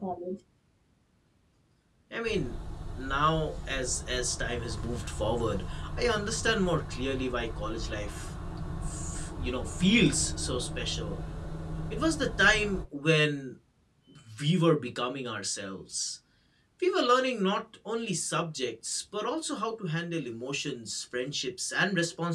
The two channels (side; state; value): both; identical; correlation 1.00